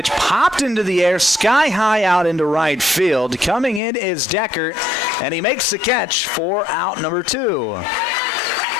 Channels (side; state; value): right; drops out; at 3.8 s